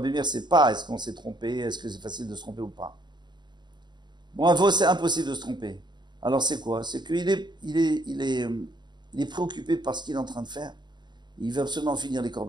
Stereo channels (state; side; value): late; left; 0.21 ms